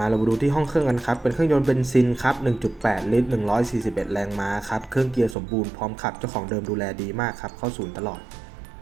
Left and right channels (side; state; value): left; drops out; at 5.4 s